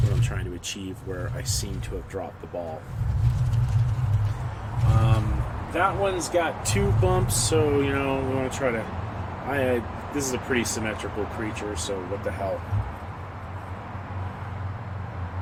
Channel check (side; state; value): both; identical; correlation 1.00